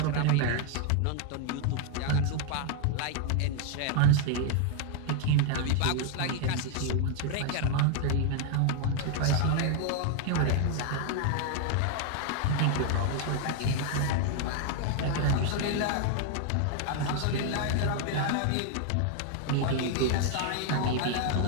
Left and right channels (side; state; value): both; different; correlation 0.00